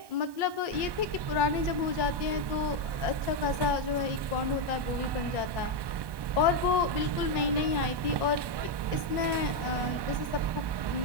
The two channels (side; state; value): left; late; 1.2 ms